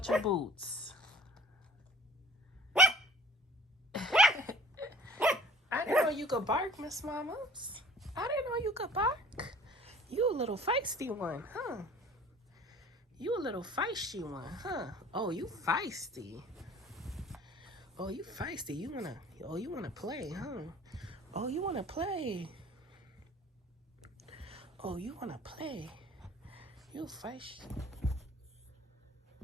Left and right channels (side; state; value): both; normal; correlation 0.49